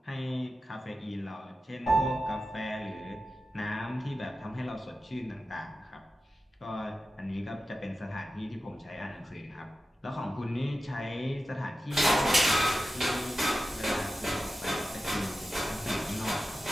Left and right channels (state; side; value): normal; both; correlation 0.93